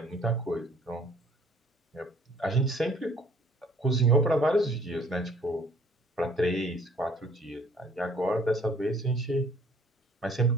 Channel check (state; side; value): normal; both; correlation 0.58